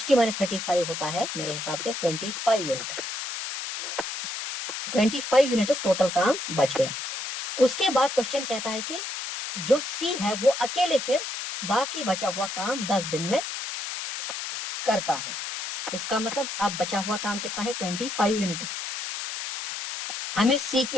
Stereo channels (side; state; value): left; noise; hiss, 6 dB below the sound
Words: माइनस 35 होता है मेरे हिसाब से 25 यूनिट्स। 25 यूनिट्स टोटल काम बच गया। उसके बाद क्वेश्चन कहता है कि जो सी है वो अकेले फिर बाकी बचा हुआ काम 10 दिन में करता है। इसका मतलब अब बचा हुआ काम कितना है? 25 यूनिट्स। हमें सी